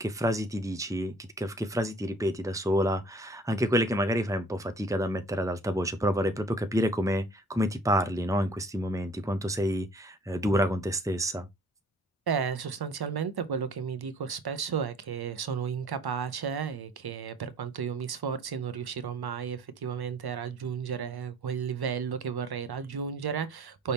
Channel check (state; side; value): normal; both; correlation 0.54